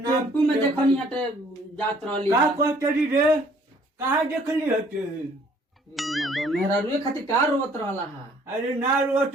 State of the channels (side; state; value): both; normal; correlation 0.59